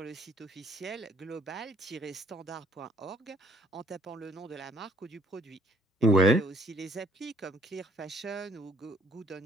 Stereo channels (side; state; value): both; normal; correlation 0.62